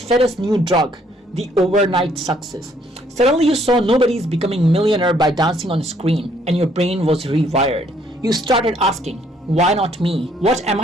us new drug, the overnight success. Suddenly you saw nobody's becoming millionaire by dancing on a screen, and your brain was rewired. You started asking, why not me? What am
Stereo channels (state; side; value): normal; both; correlation 0.66